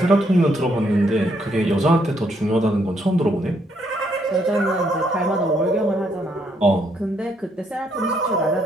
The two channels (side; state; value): both; normal; correlation 0.73